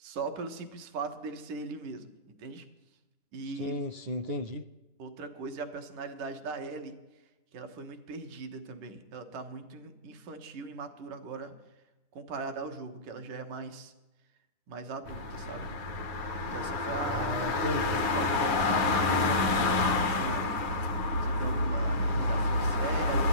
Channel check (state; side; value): late; left; 10 ms